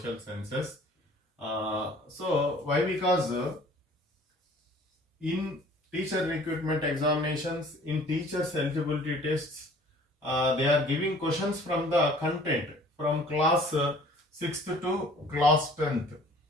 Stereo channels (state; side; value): normal; both; correlation 0.51